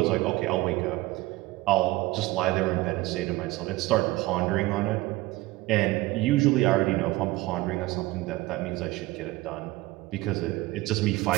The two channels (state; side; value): quieter; left; 19.4 dB